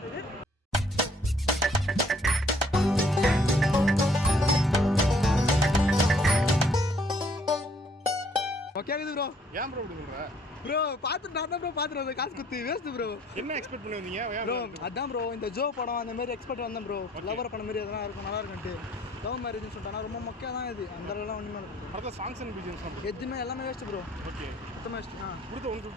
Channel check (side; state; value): both; normal; correlation 0.62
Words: கேக்குது ப்ரோ. ஏன் ப்ரோ இப்படி சொல்ற? ப்ரோ பார்த்து நான் தான் ப்ரோ பார்த்துட்டு காசு குத்து வேஸ்ட் ப்ரோ. என்ன எக்ஸ்பெக்ட் பண்ணி வந்தீங்க ப்ரோ? அதான் ப்ரோ இந்த ஜோ படம் அந்த மாதிரி எக்ஸ்பெக்ட் வந்தேன் ப்ரோ. லவர் படம் மாதிரி எதனா இருக்கும் நல்லா இருக்குன்ட்டு. லவ் மேரேஜ்னு சொல்லிட்டானா ரொம்ப மொக்கையாக தான் இது. அந்த அளவுலாம் ஒன்றுமே இல்லை. அடுத்த சாங்ஸ் அண்ட் பிஜிஎம்ஸ் எதுவுமே எல்லாமே வேஸ்ட் ப்ரோ. ஓகே சுத்தமாக வேஸ்ட். கொடுத்த